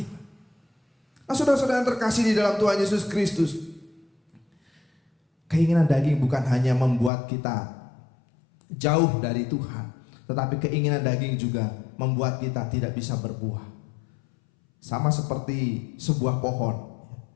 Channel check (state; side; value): drops out; right; at 7.1 s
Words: Nah, saudara-saudara yang terkasih di dalam Tuhan Yesus Kristus, keinginan daging bukan hanya membuat kita jauh dari Tuhan, tetapi keinginan daging juga membuat kita tidak bisa berbuah. Sama seperti sebuah pohon,